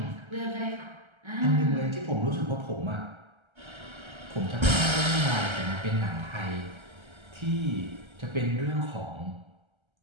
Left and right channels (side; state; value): left; late; 1.3 ms